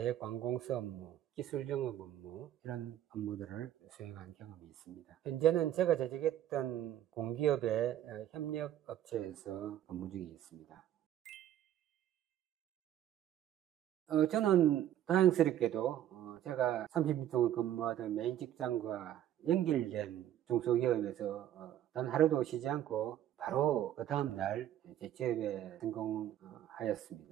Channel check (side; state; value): left; quieter; 11.6 dB